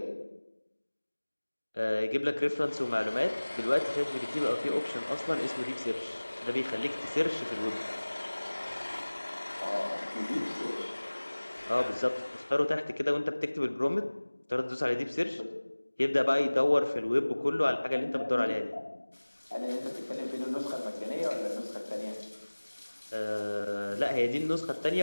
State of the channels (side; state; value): both; inverted; correlation -1.00